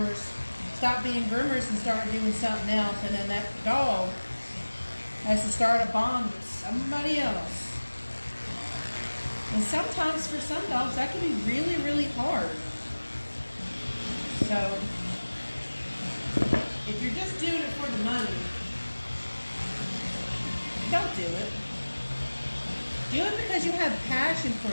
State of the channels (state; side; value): inverted; both; correlation -1.00